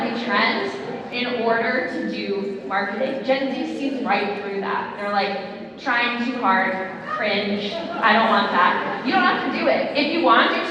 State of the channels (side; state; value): both; identical; correlation 1.00